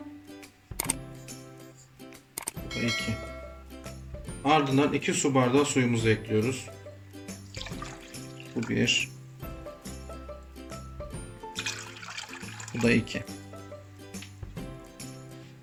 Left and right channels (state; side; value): identical; both; correlation 1.00